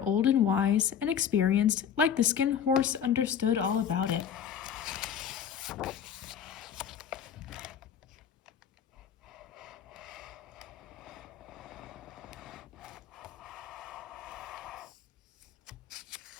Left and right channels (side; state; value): right; quieter; 8.4 dB